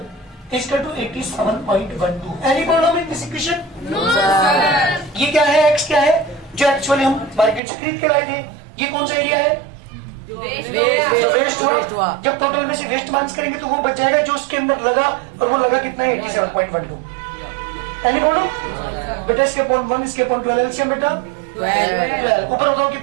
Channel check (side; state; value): left; drops out; at 7.6 s